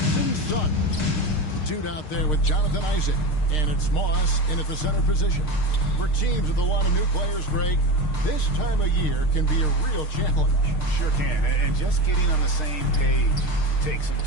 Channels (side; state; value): right; late; 6.5 ms